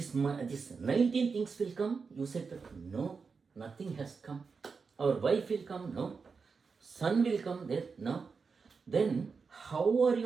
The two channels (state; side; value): quieter; left; 5.1 dB